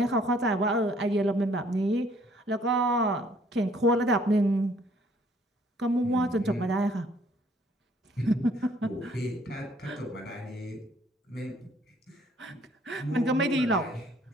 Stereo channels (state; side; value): normal; both; correlation 0.62